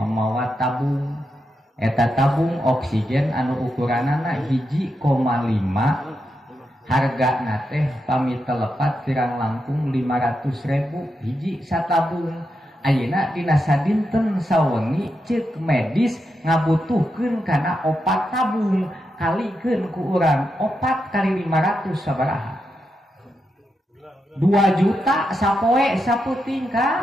tabung eta tabung oksigen anu ukuranana 1,5 hargana teh pami telepat pirang langkung 500.000 hiji satabung. Ayeuna dina sadinten sawengi ceuk medis ngabutuhkeun kana opat tabung kalikeun ku urang 4 kali 500 sabaraha 2 juta sapoe saputing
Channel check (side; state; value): both; normal; correlation 0.85